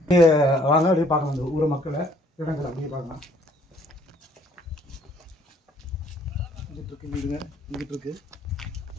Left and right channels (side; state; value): both; normal; correlation 0.62